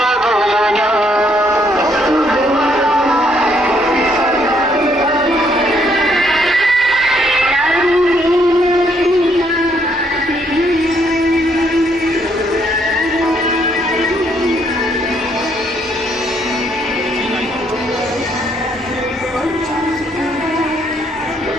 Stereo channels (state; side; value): normal; both; correlation 0.70